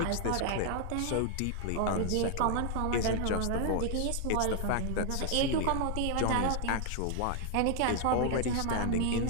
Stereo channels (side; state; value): both; different; correlation 0.00